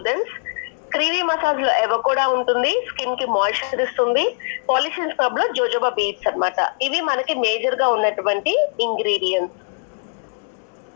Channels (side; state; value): right; silent; 65 dB below the other